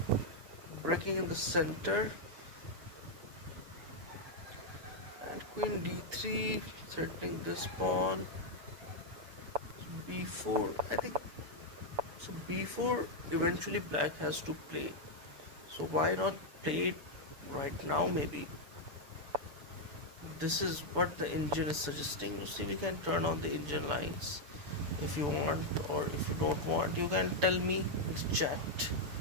breaking in the center, and queen d3, threatening this pawn. b4, I think so. b4 eventually black has to play, so why not play it right now? Maybe this is what the engine is suggesting. You see, we can turn on the engine lines. If you want or if you don't want, you can tell me in the chat.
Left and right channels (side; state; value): left; late; 6.9 ms